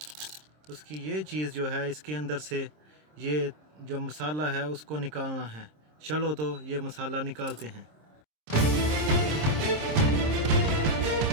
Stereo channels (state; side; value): late; left; 26 ms